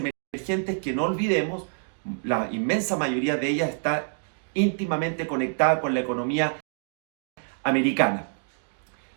que, no olvidemos, la inmensa mayoría de ellas está íntimamente conectada con la economía americana.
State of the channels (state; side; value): silent; left; digital silence